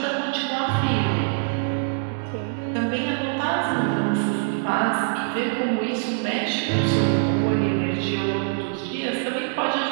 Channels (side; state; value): left; silent; digital silence